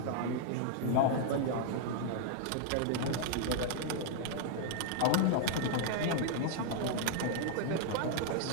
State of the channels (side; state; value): both; different; correlation 0.00